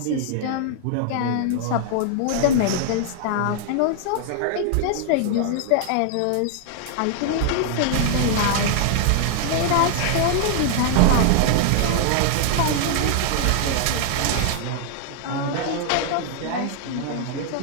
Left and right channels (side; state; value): both; different; correlation 0.00